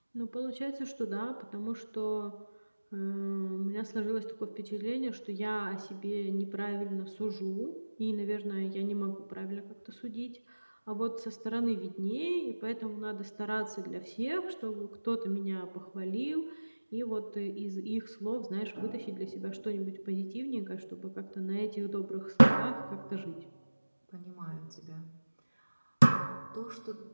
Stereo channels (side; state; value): both; inverted; correlation -1.00